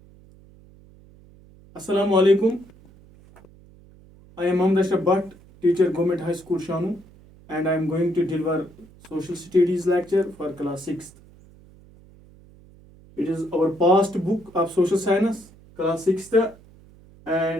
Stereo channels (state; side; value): noise; right; hum, 25 dB below the sound